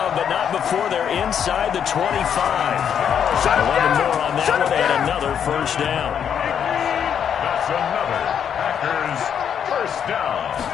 but not before they're inside the 25. 11 more on that one, and another first down. That's another Packers first down.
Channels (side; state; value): right; quieter; 8.3 dB